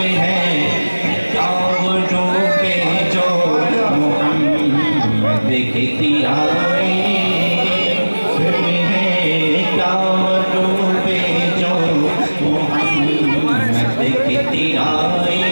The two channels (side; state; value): both; inverted; correlation -1.00